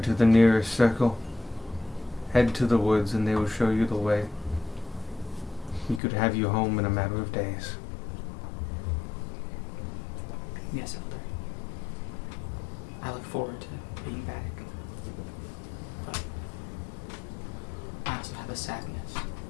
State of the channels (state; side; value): drops out; right; at 6.0 s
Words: to the nearest circle. Head to the woods and they will show you the way. We could have you home in a matter of days. Yes, Elder. I look forward to being back. But I also have a sadness.